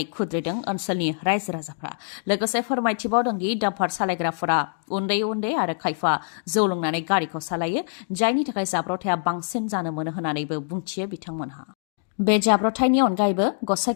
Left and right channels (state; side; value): silent; right; digital silence